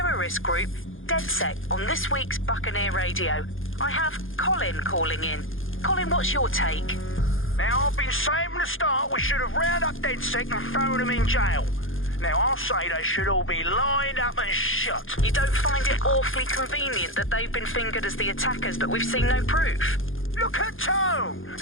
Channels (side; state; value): right; late; 0.59 ms